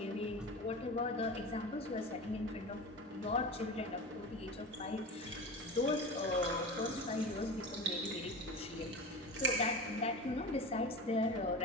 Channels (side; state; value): both; normal; correlation 0.29